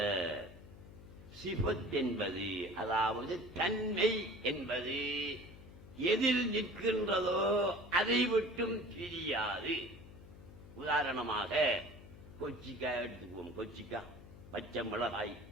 சிஃபத் என்பது, அதாவது தன்மை என்பது எதில் நிற்கின்றதோ அதை விட்டும் பிரியாது. உதாரணமாக கொச்சிக்காய் எடுத்துக்குவோம். கொச்சிக்காய், பச்சை மிளகாய்,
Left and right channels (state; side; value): noise; left; hum, 17 dB below the sound